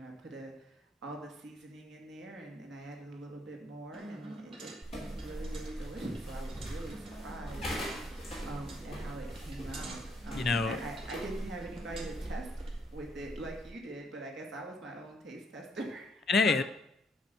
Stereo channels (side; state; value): both; normal; correlation 0.70